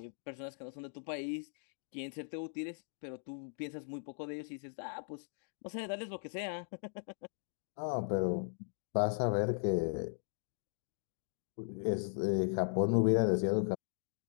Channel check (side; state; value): right; silent; digital silence